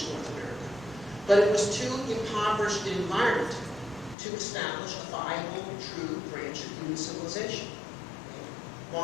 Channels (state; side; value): drops out; right; at 4.2 s